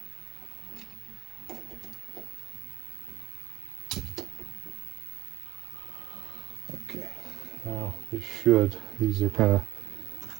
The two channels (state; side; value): quieter; left; 16.6 dB